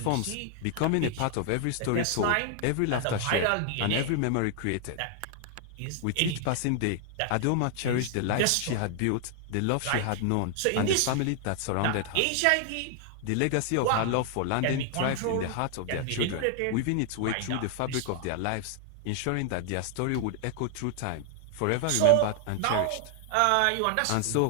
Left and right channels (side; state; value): both; different; correlation 0.00